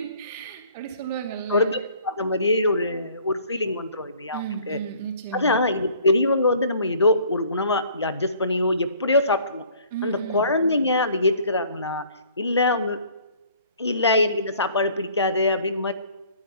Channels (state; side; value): inverted; both; correlation -0.55